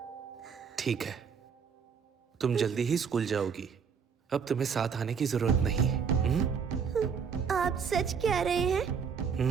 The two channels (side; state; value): left; quieter; 6.5 dB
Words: ठीक है, तुम जल्दी ही स्कूल जाओगी। अब तुम्हें साथ आने की जरूरत नहीं है। आप सच कह रहे हैं?